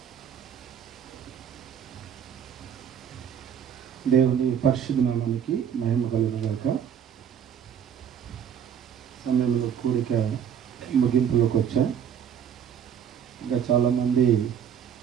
దేవుని పరిశుద్ధ నామానికి మహిమ కలుగుగాక. సమయంలో కూడిక ముగింపులోకి వచ్చా. ఇంకా చాలామంది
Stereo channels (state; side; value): quieter; left; 8.5 dB